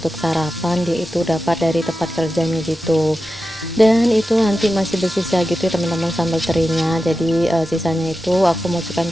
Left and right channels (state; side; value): normal; both; correlation 0.92